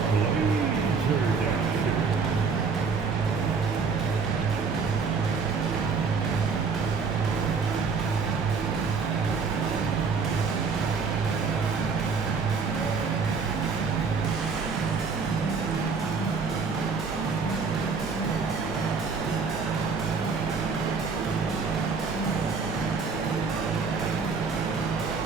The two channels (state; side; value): quieter; left; 5.1 dB